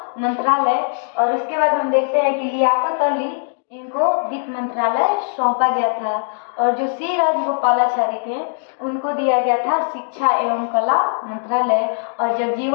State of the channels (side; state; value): right; silent; 66 dB below the other